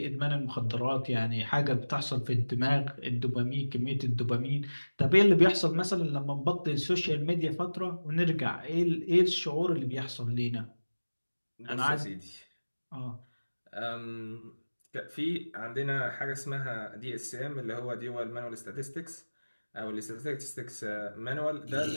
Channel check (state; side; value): inverted; both; correlation -1.00